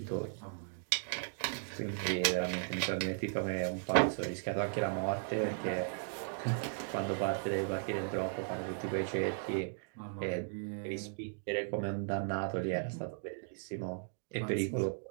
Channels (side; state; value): left; silent; digital silence